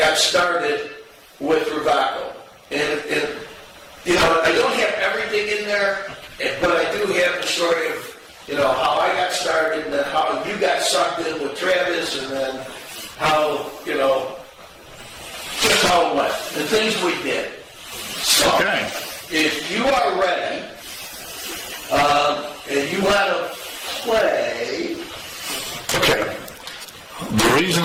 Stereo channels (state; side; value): identical; both; correlation 1.00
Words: started with Rewaco. And I don't have everything in there, but I do have the story of, how I got started and then how you got sucked in with Travis and then how, just how it went, the things we did. So, Okay. if you are ready, and you want to play... Okay. The reason